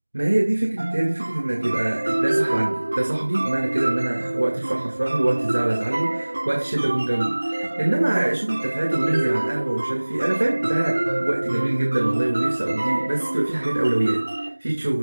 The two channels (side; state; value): both; inverted; correlation -1.00